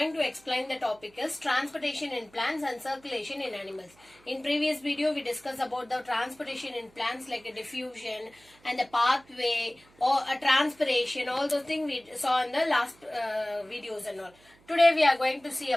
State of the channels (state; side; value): noise; right; hum, 29 dB below the sound